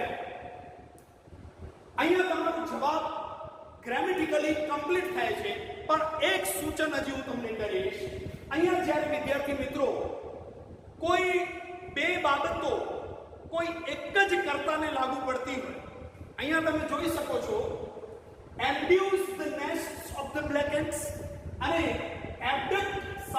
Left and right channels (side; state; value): both; identical; correlation 1.00